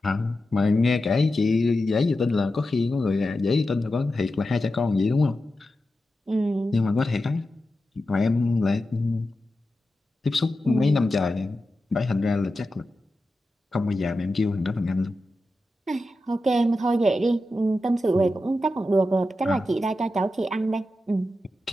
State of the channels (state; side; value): normal; both; correlation 0.91